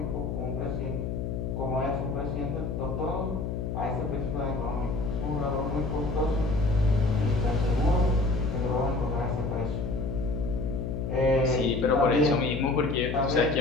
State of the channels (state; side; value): noise; left; hum, 3 dB below the sound